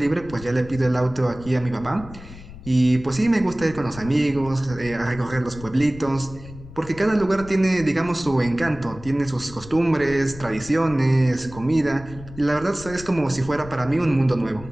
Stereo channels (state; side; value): noise; left; rumble, 16 dB below the sound